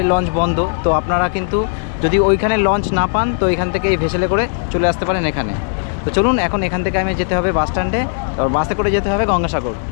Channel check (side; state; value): right; silent; digital silence